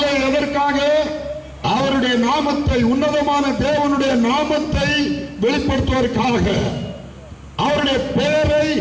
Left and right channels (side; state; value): both; identical; correlation 1.00